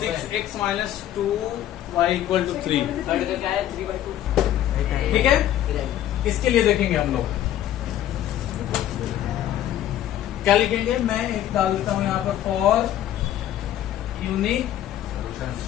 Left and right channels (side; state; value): right; quieter; 12.1 dB